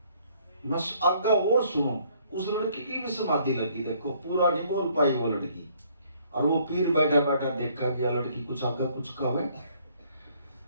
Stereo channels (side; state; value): both; inverted; correlation -0.63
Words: मैं आगे और सुनो। उस लड़की की भी समाधि लगी, देखो पूरा नहीं बोल पाई वो लड़की। और वो पीर बैठा बैठा देखा कि यह लड़की कुछ आगे कुछ कहे।